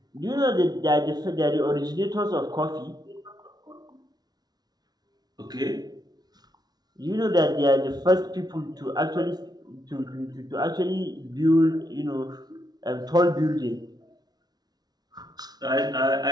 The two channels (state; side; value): late; left; 0.19 ms